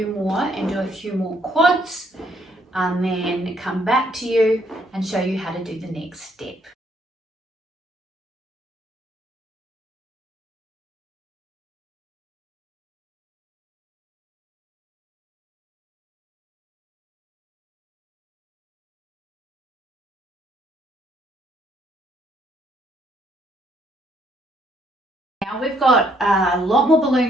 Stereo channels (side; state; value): both; normal; correlation 0.68